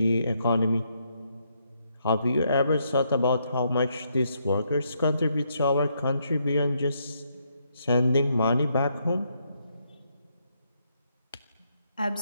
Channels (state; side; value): inverted; both; correlation -0.76